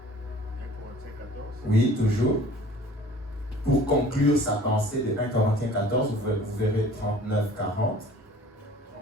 1 Corinthiens 14. Oui, toujours. Pour conclure sa pensée de 1 Corinthiens 14, vous verrez 39-40.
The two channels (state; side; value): normal; both; correlation 0.48